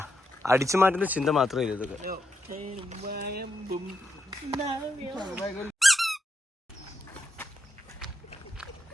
അടിച്ചു മാറ്റുന്ന ചിന്ത മാത്രമേ ഇല്ല ഇതൊക്കെ.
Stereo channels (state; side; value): normal; both; correlation 0.83